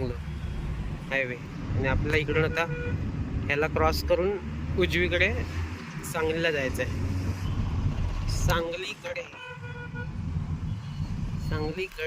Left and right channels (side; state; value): both; identical; correlation 1.00